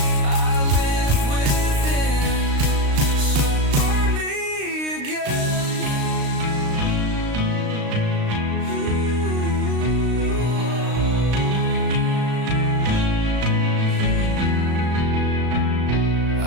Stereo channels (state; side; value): late; left; 35 ms